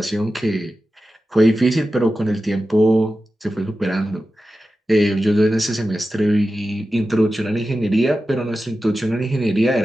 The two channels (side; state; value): both; normal; correlation 0.93